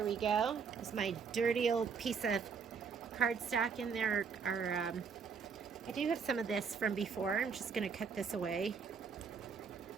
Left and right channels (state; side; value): quieter; left; 5.9 dB